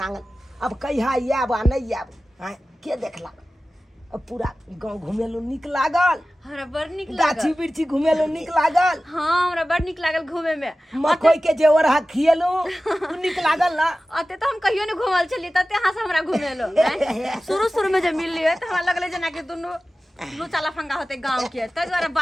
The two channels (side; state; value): both; normal; correlation 0.96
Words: आंगन अब कहिया आब आ नहीं आब हैं के देखला अब पूरा गांव घुमेलो निक लागल हमरा बड़ नीक गाछी लागल बिरछी घुमेलो निक लागल हां हमरा बड़ नीक लागल घूमे में मकई के जेवर हा खिएलो निक लागल ना अते तो हम कहियो ने घुमल छलिए तते अहाँ से हमरा घुमेलो शुरू में जब मिललिए त हमरा लगले जना कि दुनु लुचा लफंगा होते गांव के त द्वारा